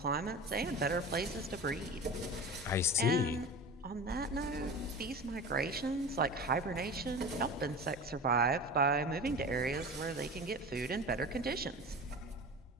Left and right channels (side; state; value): both; normal; correlation 0.33